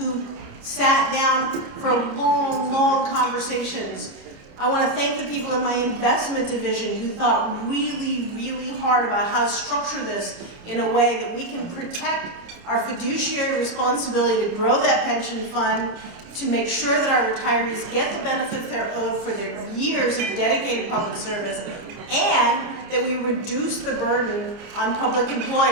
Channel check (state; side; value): late; left; 29 ms